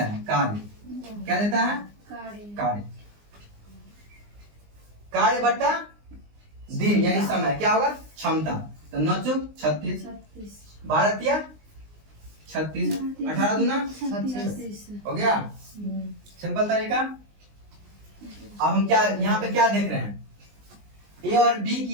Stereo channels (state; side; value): late; left; 19 ms